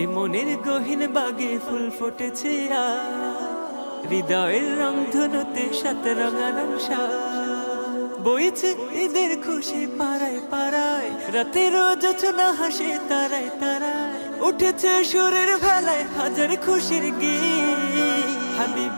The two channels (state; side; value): inverted; both; correlation -1.00